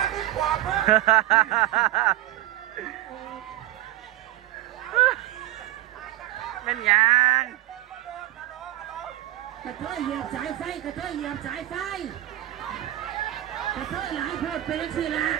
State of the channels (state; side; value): quieter; left; 15.2 dB